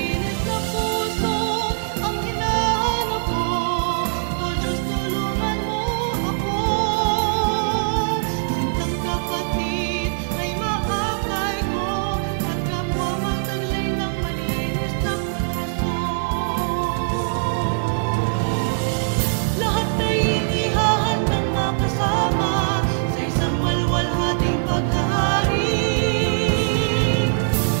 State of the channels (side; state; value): left; silent; digital silence